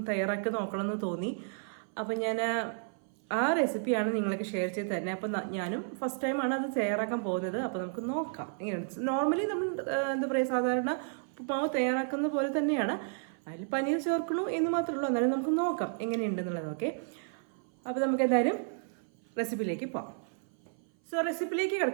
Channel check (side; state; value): left; silent; 56 dB below the other